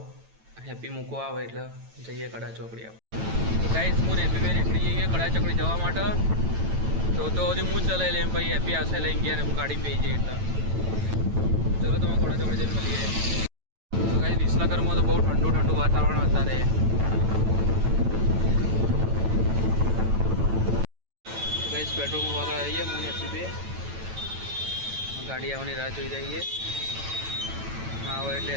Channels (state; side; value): late; left; 9.1 ms